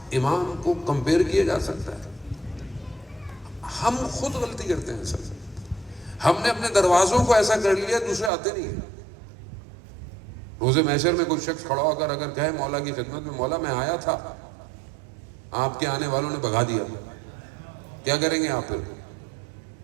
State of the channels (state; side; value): drops out; left; at 8.3 s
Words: امام کو کمپیئر کیا جا سکتا ہے؟ ہم خود غلطی کرتے ہیں سر، ہم نے اپنے دروازوں کو ایسا کر لیا دوسرے آتے نہیں ہیں۔ روز محشر میں کوئی شخص کھڑا ہو کر اگر کہے مولا کی خدمت میں، مولا میں آیا تھا، آپ کے آنے والوں نے بھگا دیا، کیا کریں گے آپ؟ پھر